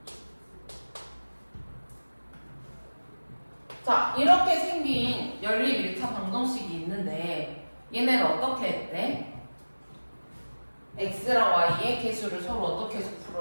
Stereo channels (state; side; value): inverted; both; correlation -1.00